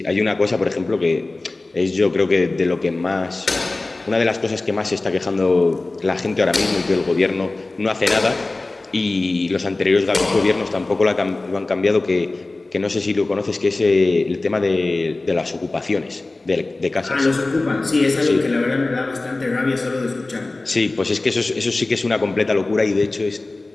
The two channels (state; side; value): quieter; right; 3.1 dB